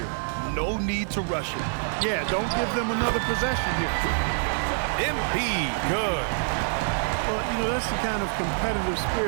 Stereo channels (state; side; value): silent; left; digital silence